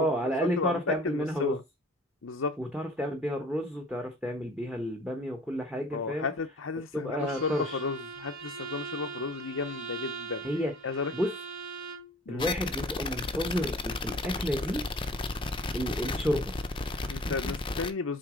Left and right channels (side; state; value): both; normal; correlation 0.48